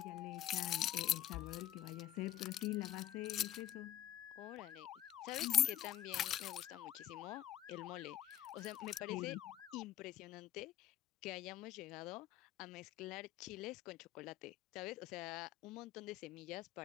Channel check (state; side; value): quieter; right; 12.5 dB